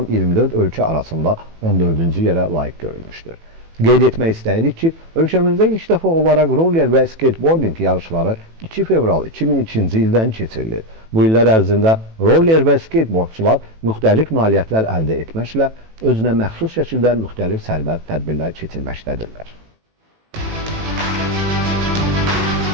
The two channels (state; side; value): late; left; 18 ms